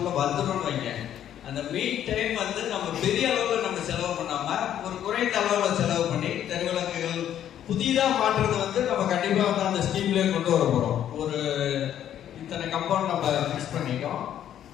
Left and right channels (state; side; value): quieter; right; 10.6 dB